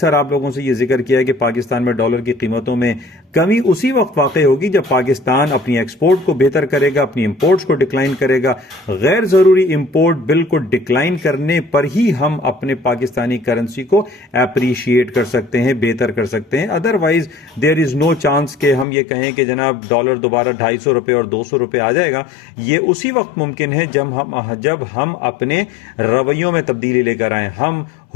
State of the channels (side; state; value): right; drops out; at 18.9 s